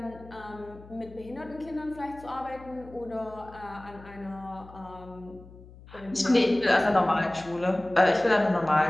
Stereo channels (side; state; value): left; noise; hum, 20 dB below the sound